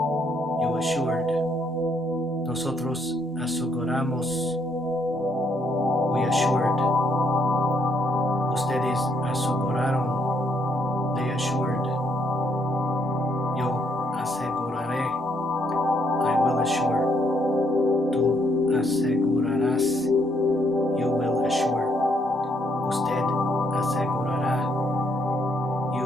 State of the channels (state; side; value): normal; both; correlation 0.72